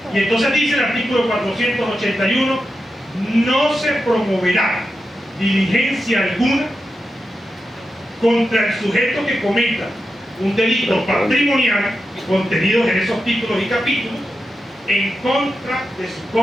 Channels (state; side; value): normal; both; correlation 0.89